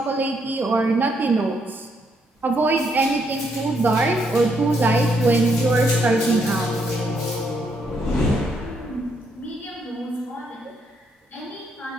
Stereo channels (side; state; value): both; normal; correlation 0.75